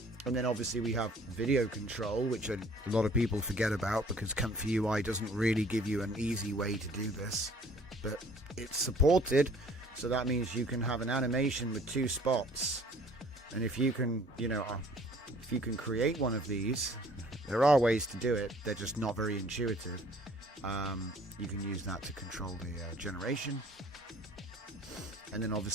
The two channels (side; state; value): both; normal; correlation 0.54